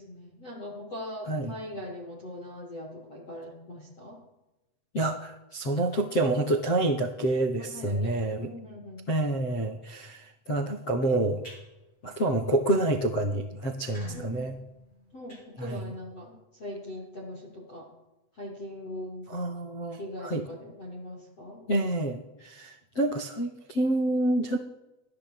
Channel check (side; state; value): right; late; 8.1 ms